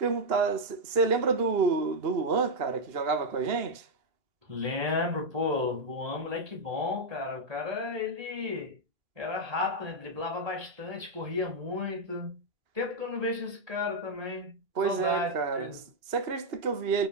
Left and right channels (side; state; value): left; late; 2.8 ms